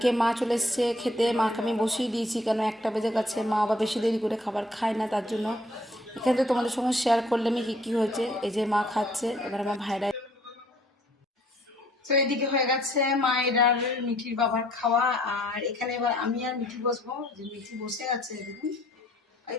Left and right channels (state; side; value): normal; both; correlation 0.61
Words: মা চলে এসছে খেতে। মাকে আমি বসিয়ে দিয়েছি, কেন 1টা বেজে গেছে। মা আবার বেশি দেরি করে খাবার খায় না, তার জন্য এখানে তো তোমাদের সঙ্গে শেয়ার করলাম কি কি হয়েছে। এই যে মা খাচ্ছে, এবার আমার ভাইরা। তো এদিকে হয়ে গেছে মায়ের আর মিঠির বাবার খাওয়া। আর এখানে এবার আমি আর মিঠি বসবো। যে মিঠি বসে আছে দেখুন, এই